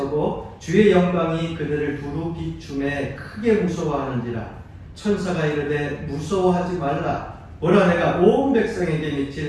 주의 영광이 그들을 두루 비춤에 크게 무서워하는지라. 천사가 이르되 무서워하지 말라. 보라 내가 온 백성에게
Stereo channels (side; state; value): both; identical; correlation 1.00